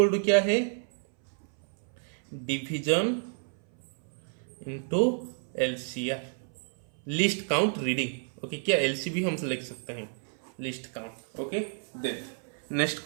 to क्या है, division into LCR, least count reading. Okay, क्या एलसीबी हम लिख सकते हैं, least count. Okay, then next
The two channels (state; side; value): silent; left; 58 dB below the other